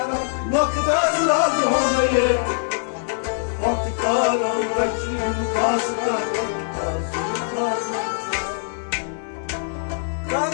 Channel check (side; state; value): right; silent; 64 dB below the other